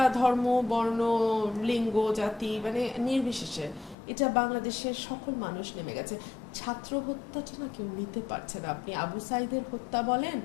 ধর্ম, বর্ণ, লিঙ্গ, জাতি মানে নির্বিশেষে এটা বাংলাদেশের সকল মানুষ নেমে গেছে। ছাত্র হত্যাটা না কেউ নিতে পারছে না। আপনি আবু সাইদের হত্যা বলেন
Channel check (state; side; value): drops out; right; at 4.0 s